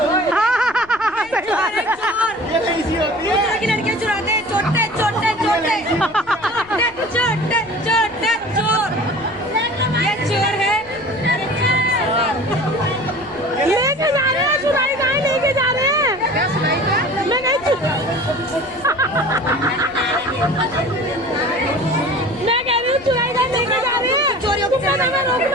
लड़कियां चुराते हैं, छोटे छोटे छोटे छोटे छोटे चोर। ये चोर है, लेके जा रहे हैं, चुराई कहाँ लेके जा रहे हैं? मैं नहीं मैं कह रही हूँ चुराई कहाँ लेके जा रहे हैं? चोरियों को रोक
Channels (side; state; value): left; noise; rumble, 25 dB below the sound